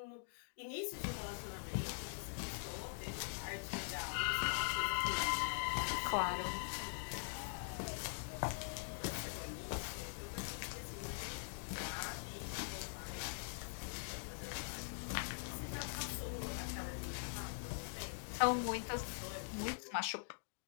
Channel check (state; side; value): silent; right; digital silence